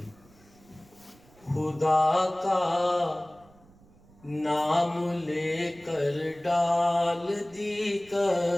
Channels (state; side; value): noise; right; rumble, 27 dB below the sound